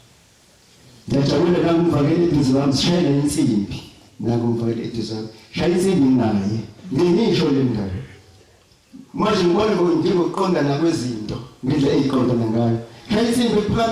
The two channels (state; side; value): identical; both; correlation 1.00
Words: ngiyajabula nangumvakele eduze wami sishayela insimbi nangumvakele eduze wami shaya insimbi naye ngisho le ndaba manje ngibona njengokuqonda nakwezinto ngendlela eyiqondana ngayo shaya insimbi